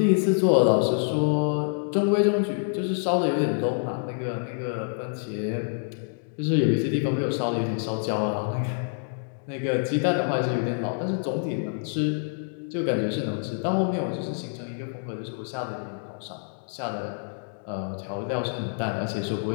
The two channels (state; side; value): silent; right; digital silence